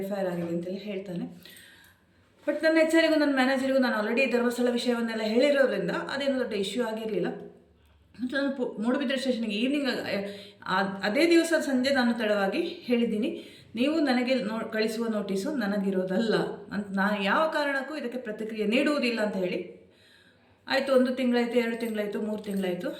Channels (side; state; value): both; identical; correlation 1.00